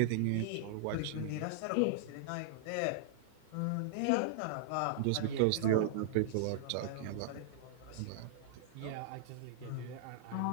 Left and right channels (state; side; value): different; both; correlation -0.01